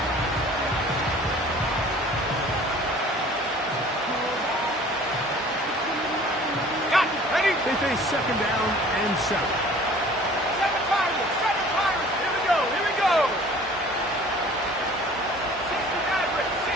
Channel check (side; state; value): both; normal; correlation 0.49